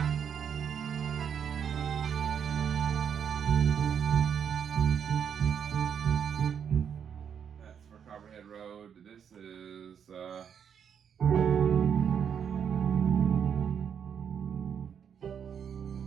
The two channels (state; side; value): quieter; left; 7.8 dB